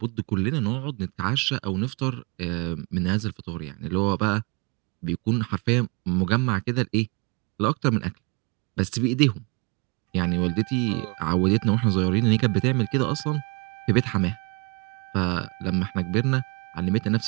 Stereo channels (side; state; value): left; quieter; 30.4 dB